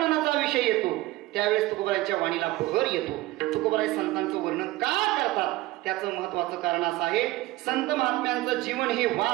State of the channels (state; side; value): quieter; left; 18.3 dB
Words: विषय येतो त्यावेळेस तुकोबारायांच्या वाणीला बहर येतो. तुकोबाराय संतांचं वर्णन का करतात त्याचं महत्वाचं कारण असं आहे, संत महात्म्यांचं जीवन हे